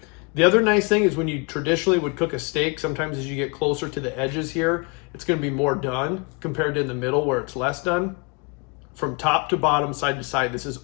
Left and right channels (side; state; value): right; quieter; 31.9 dB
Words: The other nice thing is when you traditionally would cook a steak, sometimes as you get closer to the edges here, it's going to be more done compared to in the middle where it's less done. From top to bottom, side to side, this is